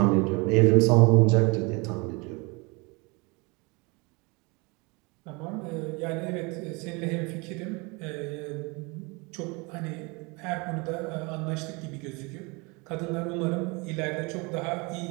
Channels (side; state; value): left; quieter; 28.2 dB